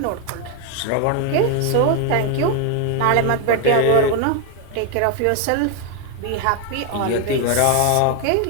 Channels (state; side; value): different; both; correlation 0.01